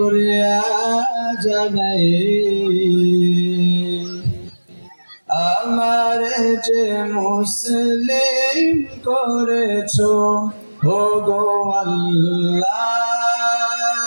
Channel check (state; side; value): inverted; both; correlation -1.00